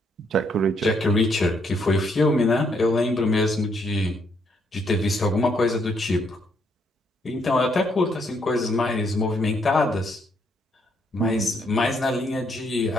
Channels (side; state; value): both; normal; correlation 0.73